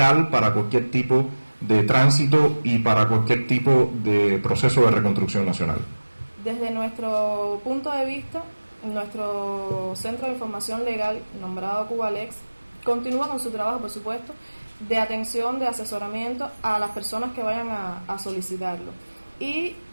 para cualquier tipo de tránsito y para cualquier tipo de proceso de reconstrucción nacional. Desde nuestro punto de vista, nuestro Centro de Información Legal, nombrado Cubalex, continúa con su trabajo, por supuesto, de atención, de asesoramiento a las personas que vayan a solicitarlo. Y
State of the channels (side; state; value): both; inverted; correlation -1.00